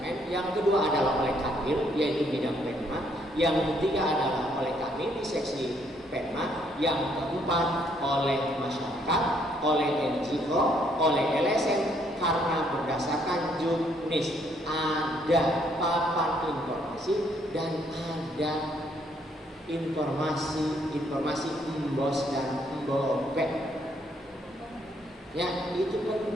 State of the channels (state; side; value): normal; both; correlation 0.69